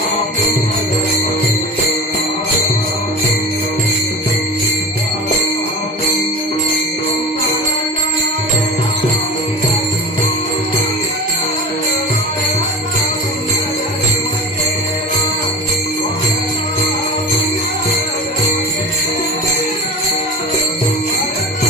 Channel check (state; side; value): normal; both; correlation 0.32